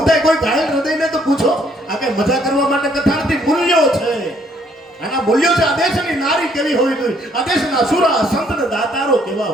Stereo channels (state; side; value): normal; both; correlation 0.66